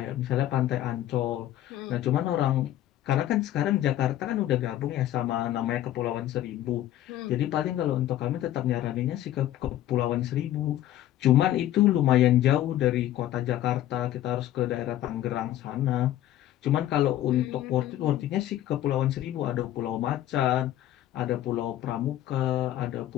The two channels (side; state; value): right; quieter; 13.1 dB